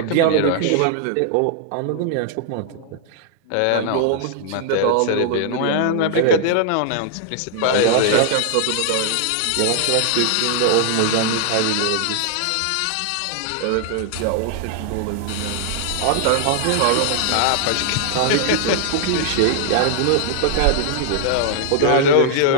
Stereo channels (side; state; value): both; different; correlation -0.01